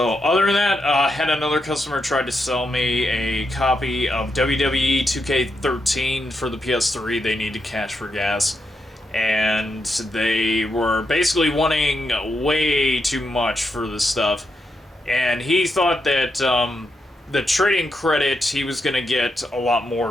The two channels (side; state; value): both; normal; correlation 0.84